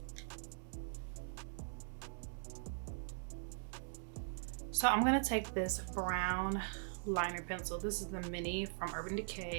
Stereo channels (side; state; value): left; silent; digital silence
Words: So I'm gonna take this brown liner pencil. This is the mini from Urban